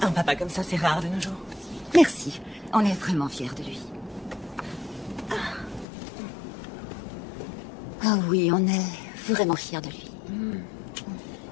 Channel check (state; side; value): drops out; right; at 5.9 s